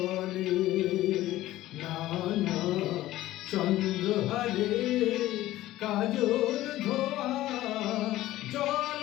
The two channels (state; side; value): quieter; right; 15.4 dB